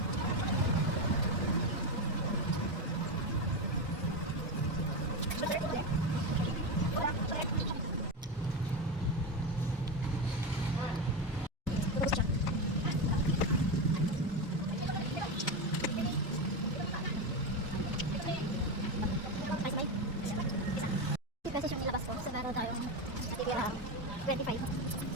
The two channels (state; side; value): normal; both; correlation 0.15